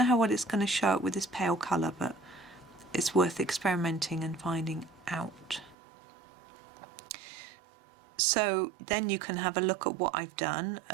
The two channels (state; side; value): drops out; left; at 5.8 s